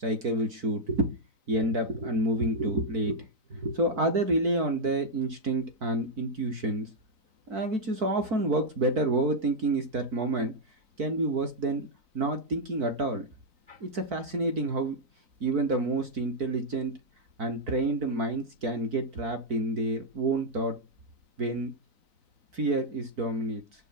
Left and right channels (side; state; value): left; late; 4.5 ms